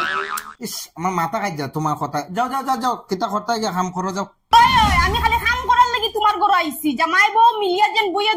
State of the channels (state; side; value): identical; both; correlation 1.00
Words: ইস আমার মাথা খাই যা তোমার কথা। যাও যাও যাও যাও কিতা করতে গিয়ে কাম করো যাও। আমি খালি কাম করার লাগি তোমার ঘর আইছি, জামাই বউ মিলিয়া যেন বইয়া